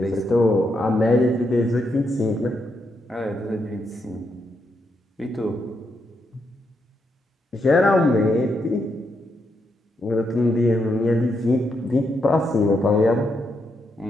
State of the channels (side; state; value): both; normal; correlation 0.80